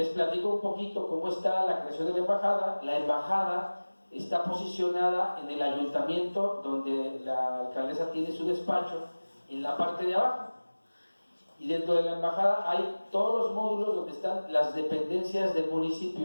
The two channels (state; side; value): inverted; both; correlation -1.00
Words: platico un poquito cómo está la creación de la embajada. La embajada está posicionada en el ayuntamiento, donde la alcaldesa tiene su despacho, en la parte de abajo. Y dentro de la embajada hay todos los módulos donde están las dependencias del